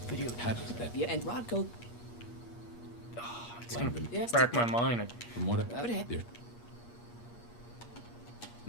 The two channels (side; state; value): right; late; 8.5 ms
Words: video? How does that? Yeah, and Rodko. Oh, it's gonna rack my mind. From what